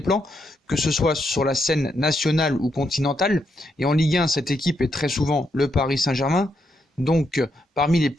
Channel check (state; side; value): normal; both; correlation 0.79